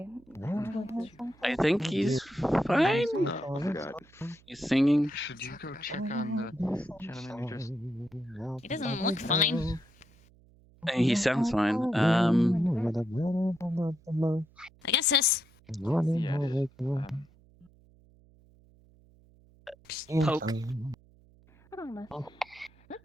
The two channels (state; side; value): noise; right; hum, 28 dB below the sound